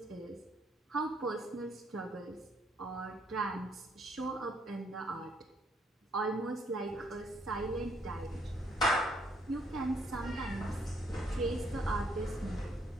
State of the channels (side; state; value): both; normal; correlation 0.70